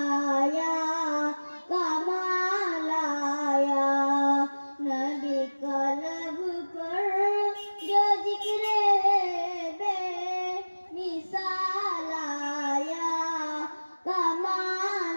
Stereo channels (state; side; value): inverted; both; correlation -1.00